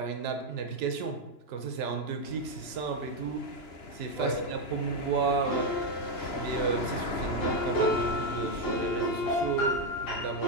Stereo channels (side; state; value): right; late; 2.9 ms